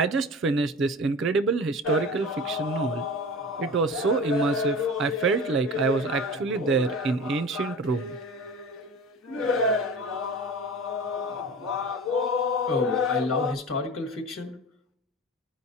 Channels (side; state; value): both; normal; correlation 0.35